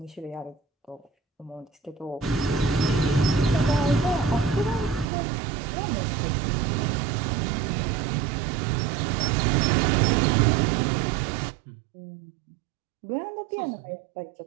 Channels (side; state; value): left; drops out; at 5.1 s